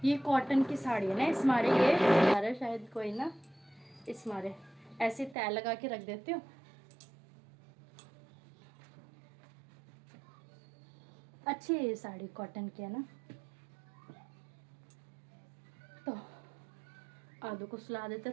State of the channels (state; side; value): drops out; left; at 5.4 s